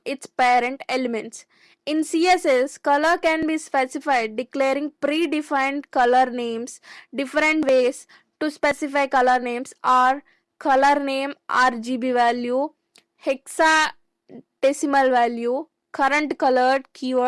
its parent elements. In CSS, color can be specified declaring predefined color names. Different ways to specify color names are color name RGB value, hexadecimal value, current colored.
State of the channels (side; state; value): both; identical; correlation 1.00